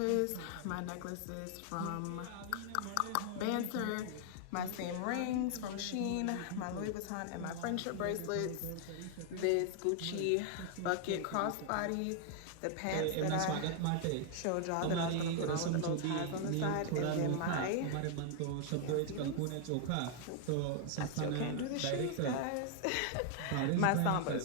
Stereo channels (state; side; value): different; both; correlation 0.00